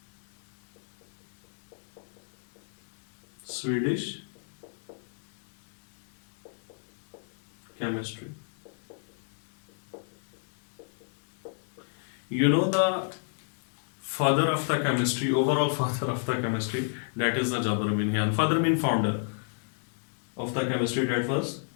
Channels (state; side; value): silent; right; digital silence